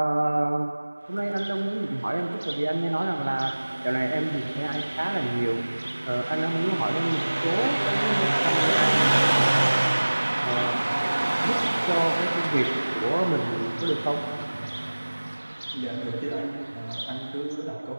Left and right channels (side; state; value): both; inverted; correlation -1.00